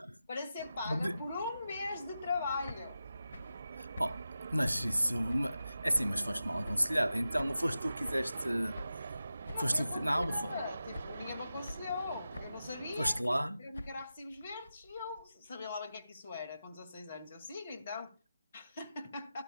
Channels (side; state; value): both; inverted; correlation -0.92